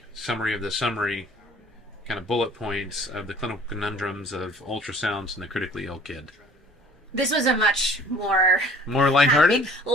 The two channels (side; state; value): both; normal; correlation 0.51